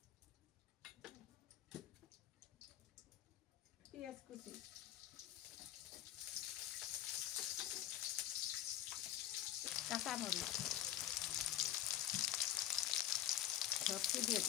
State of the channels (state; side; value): quieter; right; 12.2 dB